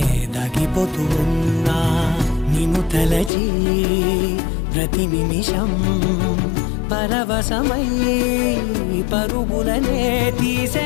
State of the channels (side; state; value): right; drops out; at 3.3 s